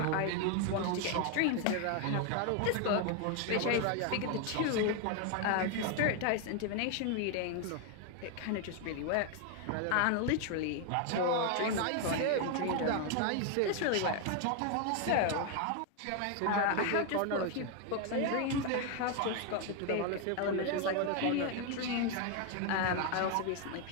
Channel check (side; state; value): both; different; correlation 0.01